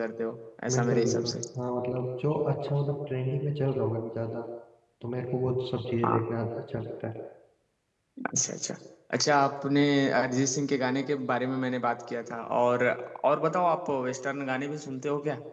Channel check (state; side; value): identical; both; correlation 1.00